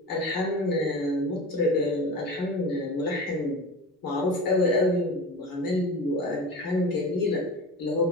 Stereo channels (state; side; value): normal; both; correlation 0.31